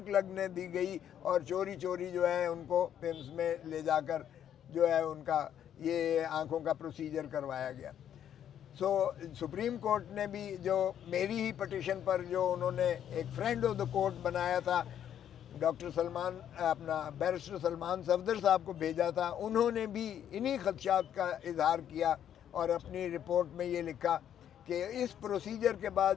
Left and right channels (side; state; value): right; quieter; 9.9 dB